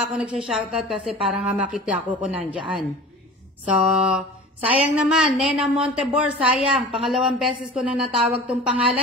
ako nagsha-shoutout kasi parang makita ko kung nandyan. So, sayang naman. Nena Montebor, sayang. Pangalawang beses ko na natawag tong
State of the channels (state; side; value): normal; both; correlation 0.38